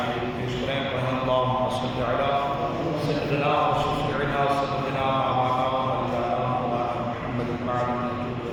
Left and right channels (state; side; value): identical; both; correlation 1.00